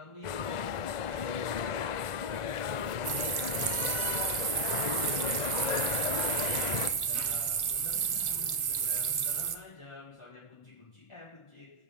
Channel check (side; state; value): right; late; 1.4 ms